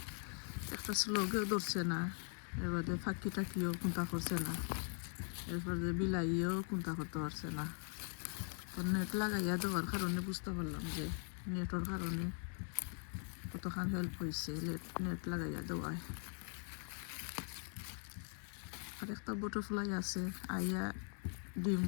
একটা স্লোগেও ধরছে না, এরপরে ফাঁকি টাকিও কোনটা করছে না, এরপরে বিলাইও কোনটা করতে পারছে না। তো নেট লাগাইয়া দেওয়ার কারণে বুঝতে পারলাম যে নেটের কারণে কতখান হেল্প হয়েছে নেট লাগাইয়া দেওয়ায়। আর একটা বাটারফ্লাই আছে আইয়া ডিম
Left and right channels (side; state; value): right; silent; 50 dB below the other